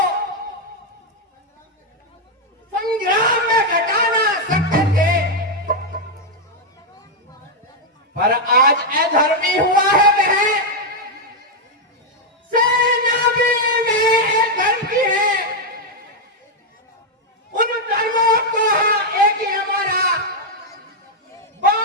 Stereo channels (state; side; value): normal; both; correlation -0.01